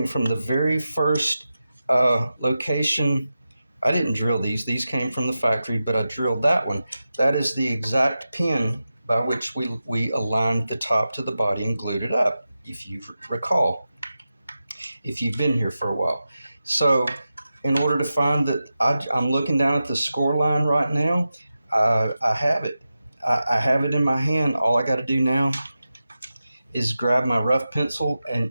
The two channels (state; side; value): inverted; both; correlation -0.92